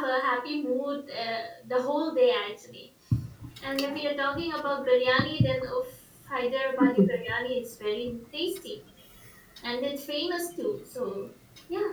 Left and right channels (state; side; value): identical; both; correlation 1.00